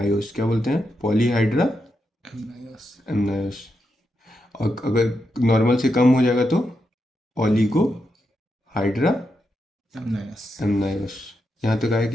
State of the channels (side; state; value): both; normal; correlation 0.85